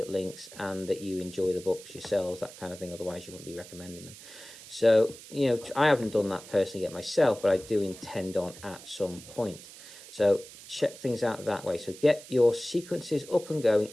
links and that you enjoy the books yourselves, that kind of thing. Otherwise, you wouldn't be recommending them. So, I haven't done that personally yet myself, but I do intend on at some point. So check things out that way. So get your sequences up and going.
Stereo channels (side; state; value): right; noise; hiss, 17 dB below the sound